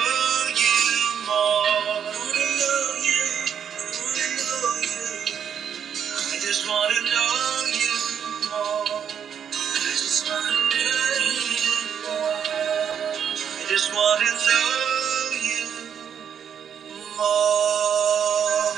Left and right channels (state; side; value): quieter; left; 8.1 dB